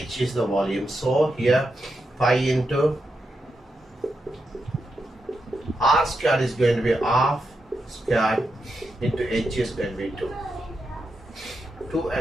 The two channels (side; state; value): both; normal; correlation 0.86